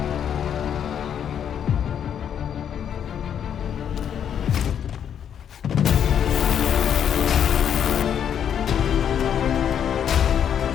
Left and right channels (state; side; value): quieter; right; 8.8 dB